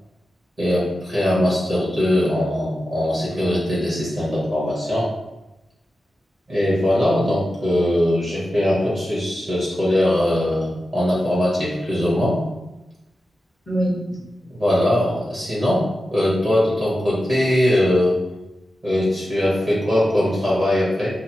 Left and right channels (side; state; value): both; normal; correlation 0.92